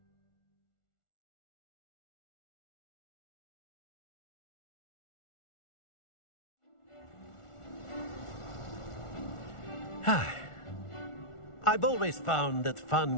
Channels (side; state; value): right; late; 1.4 ms